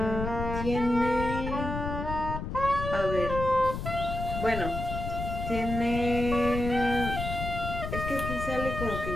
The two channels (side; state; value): left; noise; rumble, 5 dB below the sound